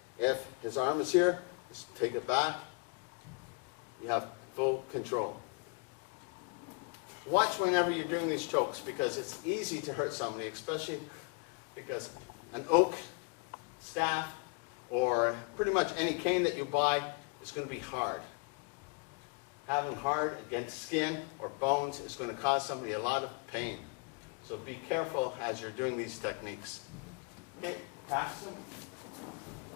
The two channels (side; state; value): right; quieter; 33.6 dB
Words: If his arm is here, just take it back. You have full control. Watch whenever you're doing these chokes, because it's easy to hurt somebody, especially because an oak staff or pretty much any cane that you buy is going to be hard. Having hard against skin or bones is going to cause somebody a lot of pain. So be careful as you're doing these techniques. Okay, pass them.